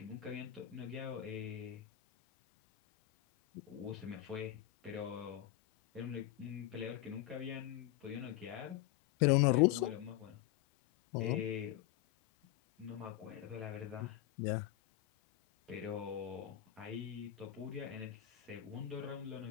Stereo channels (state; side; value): quieter; right; 13.6 dB